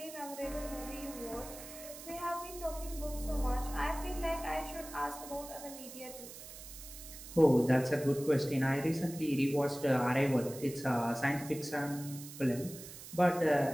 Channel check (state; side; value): noise; right; hiss, 13 dB below the sound